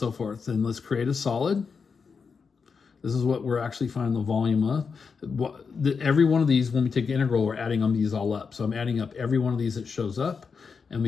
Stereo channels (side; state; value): right; quieter; 5.5 dB